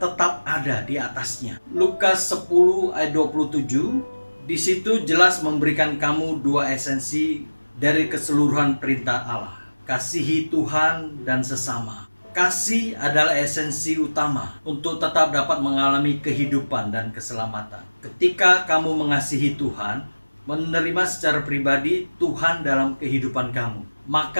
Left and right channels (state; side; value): inverted; both; correlation -1.00